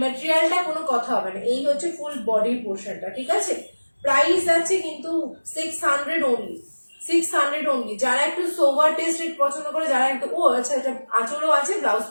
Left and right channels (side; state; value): both; inverted; correlation -1.00